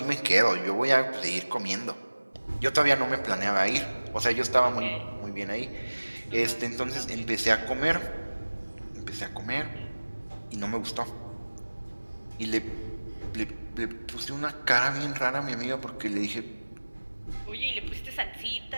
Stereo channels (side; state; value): both; inverted; correlation -1.00